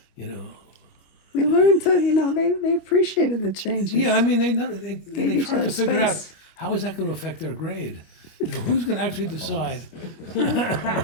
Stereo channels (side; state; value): right; late; 25 ms